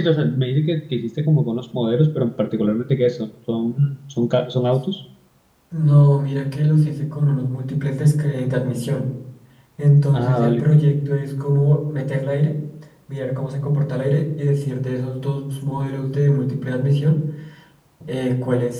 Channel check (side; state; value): both; identical; correlation 1.00